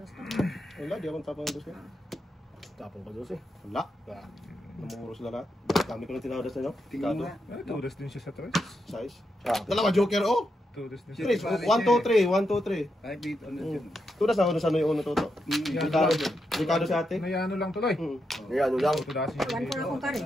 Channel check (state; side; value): normal; both; correlation 0.84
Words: Wala, di akong tapang dos ka. Tapong ka doon eh. Wala. Namuro sila lahat. Kami ko lang tinawadas na nyo. Tingin nga. Tudas din siya sa tres. Size. Ah. Dalawa joker, oh! Tudas din 3, siya. 1, 2, 3, 1, 2, 3. Kahit dito, ano dyan. Tudas na ako sa ano yung uno toto. Ricardo si ate. Nayano lang tuloy. Ayan, ano lang. Tudasin One for akong kari.